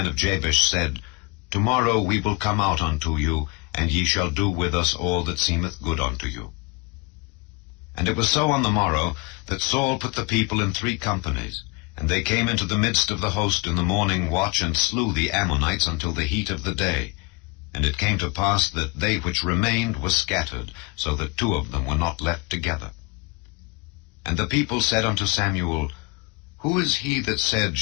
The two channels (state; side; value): quieter; right; 26.4 dB